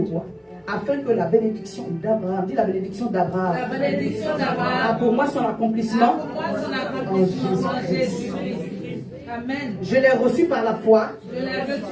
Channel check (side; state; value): both; identical; correlation 1.00